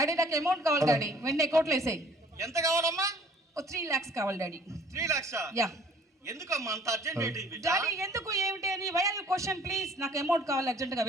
నాకు అమౌంట్ కావాలి డాడీ, వెంటనే అకౌంట్లో వేసేయి. ఎంత కావాలమ్మా? 3 lakhs కావాలి డాడీ. 3 lakhs? యా. ఎందుకమ్మా అంత అర్జెంట్ ఏంటి? డాడీ ఎందుకు ఏమిటి అని why are you question please. నాకు అమౌంట్ కావాలి అర్జెంటుగా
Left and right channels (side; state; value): both; normal; correlation 0.55